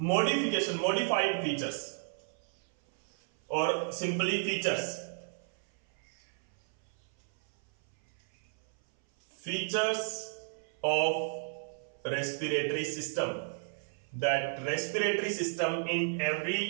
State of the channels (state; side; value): silent; left; 56 dB below the other